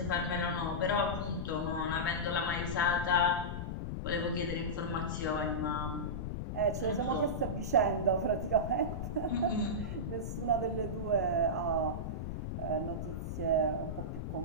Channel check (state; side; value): noise; left; rumble, 4 dB below the sound